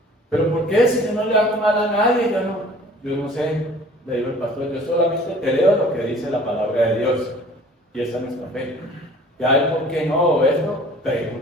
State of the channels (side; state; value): both; normal; correlation 0.49